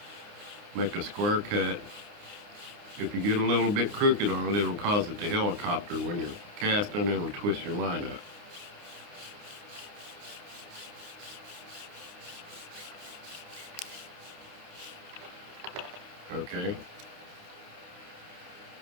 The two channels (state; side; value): late; left; 29 ms